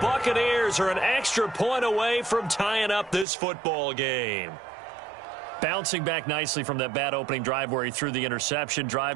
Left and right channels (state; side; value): drops out; left; at 3.2 s